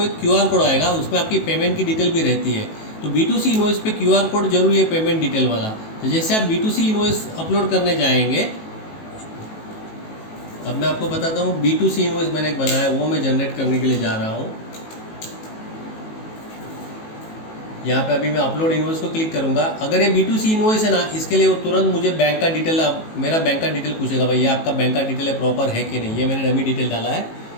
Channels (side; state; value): right; late; 18 ms